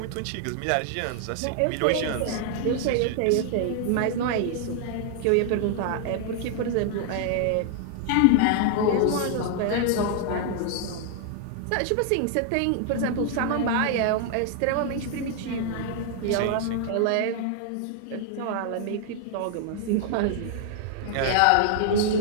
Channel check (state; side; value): different; both; correlation 0.00